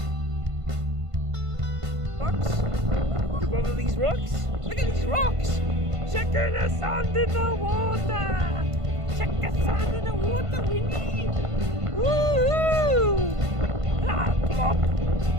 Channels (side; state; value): left; late; 1.5 ms